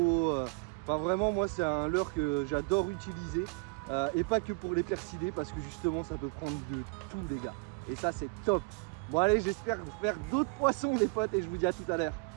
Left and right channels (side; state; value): left; quieter; 32.1 dB